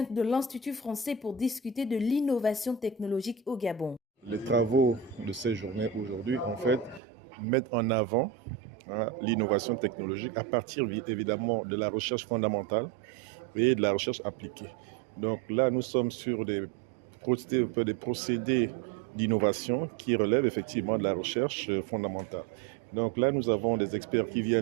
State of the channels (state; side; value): drops out; left; at 7.0 s